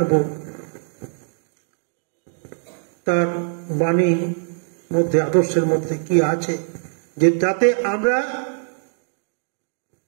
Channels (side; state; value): left; silent; digital silence